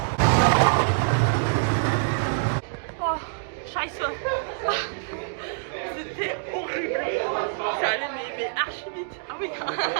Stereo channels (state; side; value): silent; left; digital silence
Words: Oh, scheiße. C'était horrible. Ça allait mais archi vite. Ah oui.